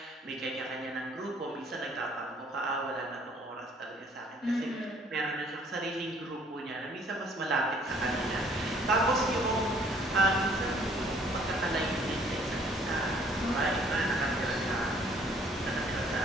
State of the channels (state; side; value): normal; both; correlation 0.59